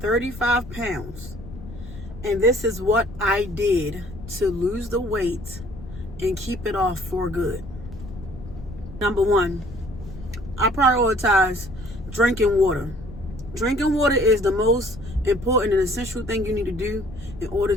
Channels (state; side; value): noise; left; rumble, 14 dB below the sound